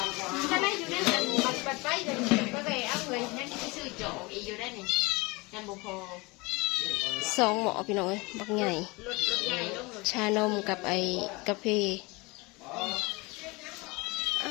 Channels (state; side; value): quieter; right; 25.1 dB